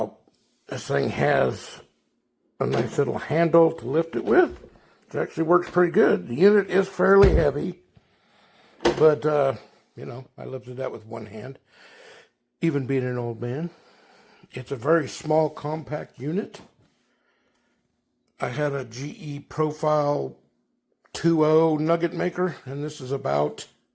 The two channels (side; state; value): both; identical; correlation 1.00